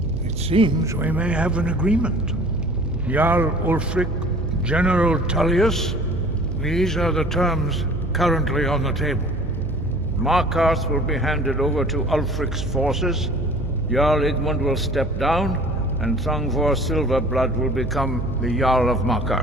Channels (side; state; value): right; noise; hum, 6 dB below the sound